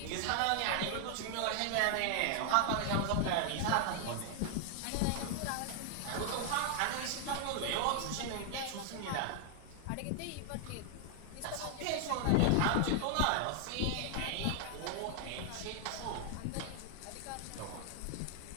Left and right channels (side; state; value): both; different; correlation 0.00